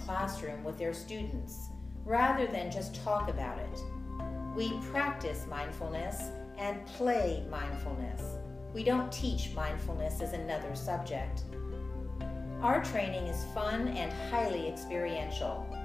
classroom with their students, rather than just talk about it. We practice mindfulness and play mindfulness. We don't teach mindfulness as another subject. Our training is fun and highly experiential.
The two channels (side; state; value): right; quieter; 3.3 dB